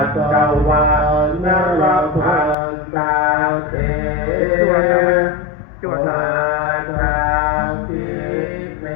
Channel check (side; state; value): right; drops out; at 2.6 s